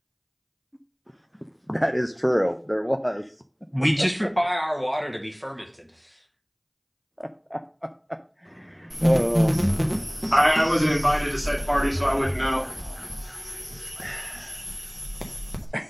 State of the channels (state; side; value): identical; both; correlation 1.00